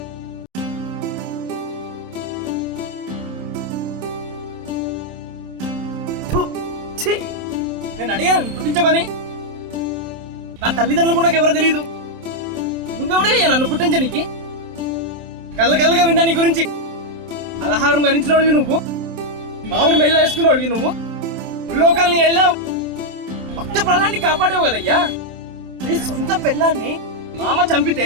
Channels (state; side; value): late; left; 27 ms